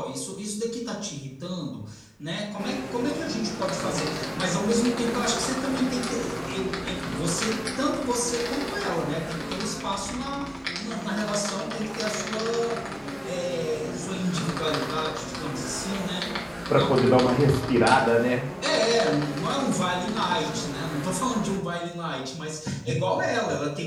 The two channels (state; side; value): identical; both; correlation 1.00